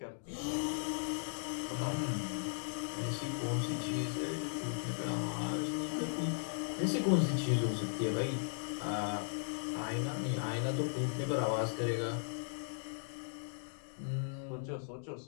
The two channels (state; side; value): silent; right; digital silence